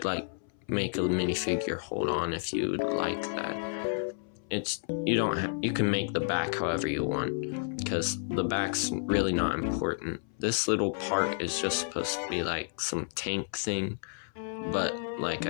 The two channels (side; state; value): right; silent; 57 dB below the other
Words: make a minifigure hold on if you would like that. You can make the back however you want because the back's really not important. This little part is just supposed to be like some tank thing, but like